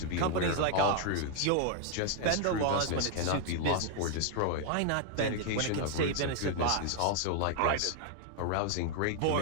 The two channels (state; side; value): different; both; correlation 0.00